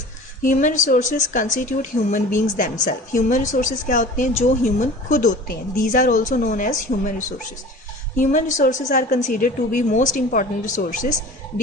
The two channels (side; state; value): both; normal; correlation 0.41